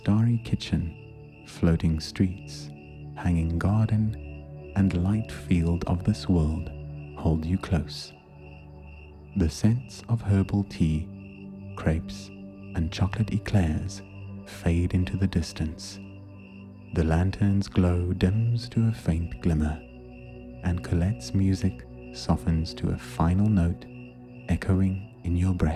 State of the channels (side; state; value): both; identical; correlation 1.00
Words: kitchen, floating streets, hanging garden, and light field of this world hold you close. The scents of herbal tea, crepes, and chocolate eclairs fade into the distance. The lantern's glow dims to a faint glimmer, and Colette's music softens to a final note echoing in your